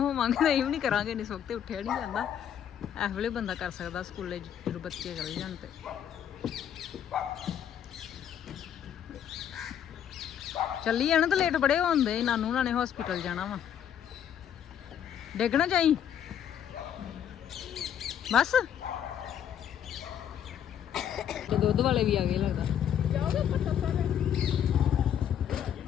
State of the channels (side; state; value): right; quieter; 9.4 dB